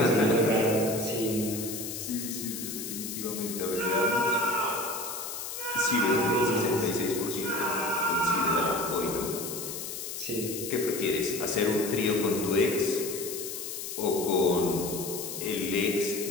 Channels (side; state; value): left; noise; hiss, 7 dB below the sound